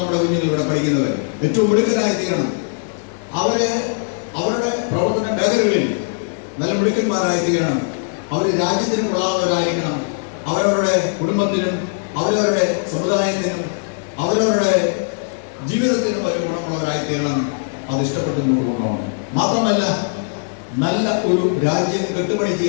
നമ്മുടെ കുഞ്ഞുങ്ങൾ ഇവിടെ പഠിക്കുന്നവർ ഏറ്റവും മിടുക്കരായി തീരണം. അവര് അവരുടെ പ്രവർത്തന മേഖലകളിൽ നല്ല മിടുക്കന്മാരായി തീരണം. അവർ രാജ്യത്തിനും കൊള്ളാവുന്നവരായിരിക്കണം. അവരവരുടെ കുടുംബത്തിനും അവരവരുടെ സമുദായത്തിനും അവരവരുടെ ജീവിതത്തിനും ഒരു ഗുണമുള്ളവരായി തീരണം. അത് ഇഷ്ടപ്പെട്ടു കൊണ്ടുപോകണം. മാത്രമല്ല, നല്ല ഒരു രാജ്യം കെട്ടുപണി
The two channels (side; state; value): right; silent; digital silence